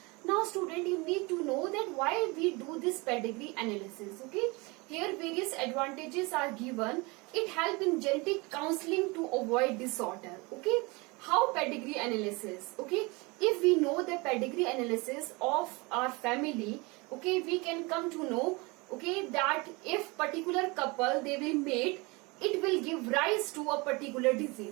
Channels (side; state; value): left; quieter; 26.2 dB